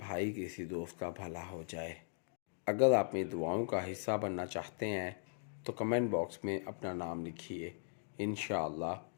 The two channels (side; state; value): right; silent; digital silence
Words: کسی دوست کا بھلا ہو جائے۔ اگر آپ میری دعاؤں کا حصہ بننا چاہتے ہیں تو کمنٹ باکس میں اپنا نام لکھیے، انشاءاللہ